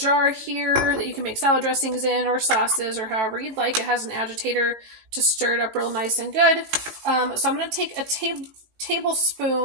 here that you can make salad dressings in, or sauces, or however you'd like. It has an agitator to stir it up real nice and good. So I'm going to take a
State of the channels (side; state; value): left; late; 18 ms